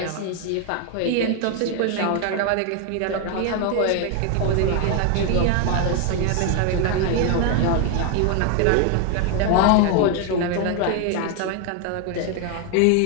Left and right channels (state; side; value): different; both; correlation 0.00